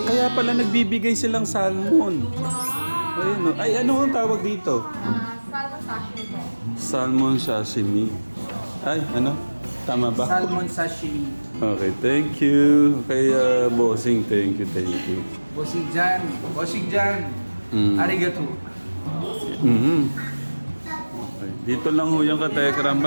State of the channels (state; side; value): inverted; both; correlation -1.00